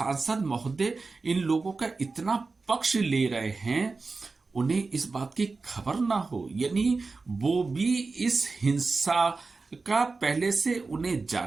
महोदय इन लोगों का इतना पक्ष ले रहे हैं, उन्हें इस बात की खबर ना हो, यानी वो भी इस हिंसा का पहले से उन्हें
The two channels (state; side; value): quieter; left; 4.0 dB